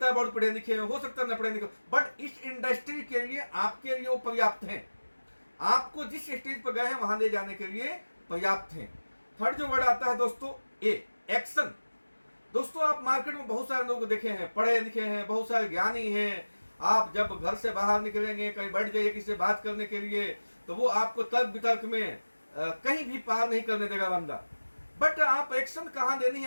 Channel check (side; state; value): both; inverted; correlation -1.00